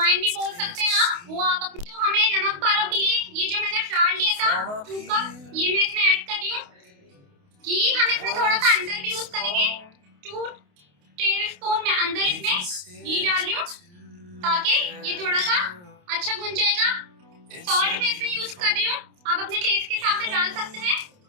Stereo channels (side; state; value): left; late; 28 ms